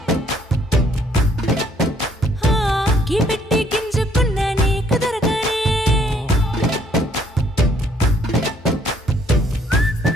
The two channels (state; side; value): normal; both; correlation 0.65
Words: కీ పెట్టి గింజుకున్న నీకు దొరకనే